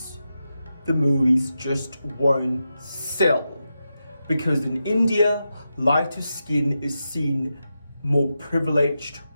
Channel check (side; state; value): both; inverted; correlation -0.88